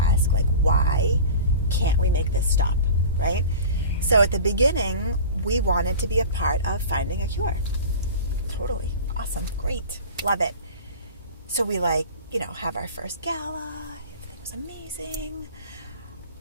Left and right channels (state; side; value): inverted; both; correlation -0.36